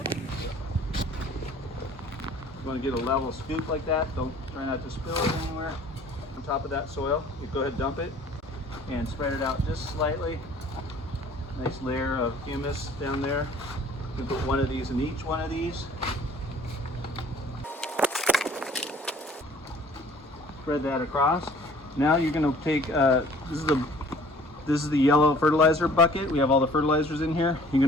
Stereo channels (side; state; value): both; normal; correlation 0.53